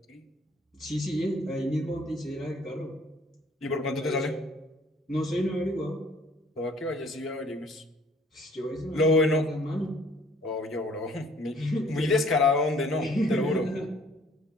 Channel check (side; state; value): both; normal; correlation 0.57